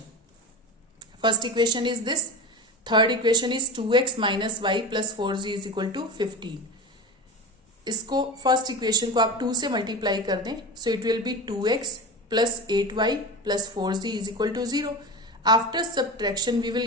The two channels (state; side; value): normal; both; correlation 0.27